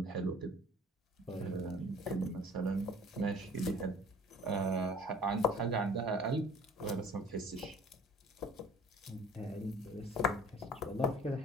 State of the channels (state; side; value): normal; both; correlation 0.50